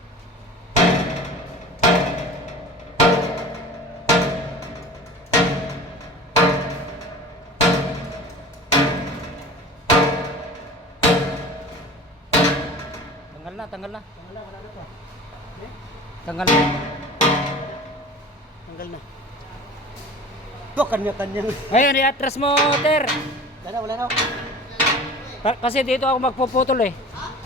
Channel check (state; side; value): normal; both; correlation 0.39